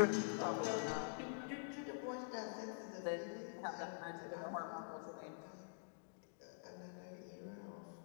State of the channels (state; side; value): silent; right; digital silence